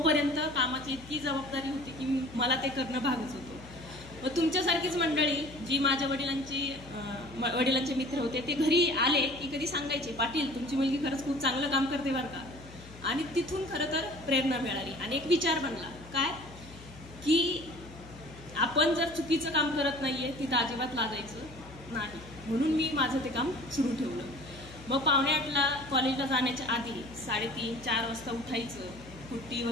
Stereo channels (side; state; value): left; noise; hum, 18 dB below the sound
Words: कामाची इतकी जबाबदारी होती की मला ते करणं भागच होतं. मग तुमच्यासारखीच मंडळी जी माझ्या वडिलांचे मित्र होते ते घरी आले की कधी सांगायचे, पाटील तुमची मुलगी खरंच खूप चांगलं काम करते बरं का. आणि तिथून खरं तर प्रेरणा मिळाली आणि एक विचार बनला काय की आपण जर चुकीचं काम करत नाहीये तिथं अजिबात लाजायचं नाही. म्हणून मी माझं ते काम सुरू ठेवलं. मग 7:45ला कॉलेजला जाण्याच्या आधी 3:30-4 वाजता उठायचं, कुट्टी